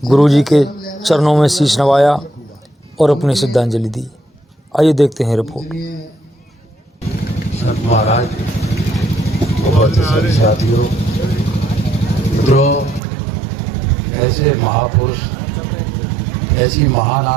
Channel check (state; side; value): drops out; left; at 13.0 s